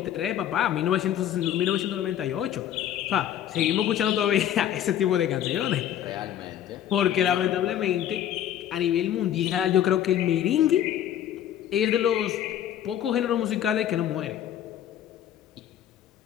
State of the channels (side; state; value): right; quieter; 10.8 dB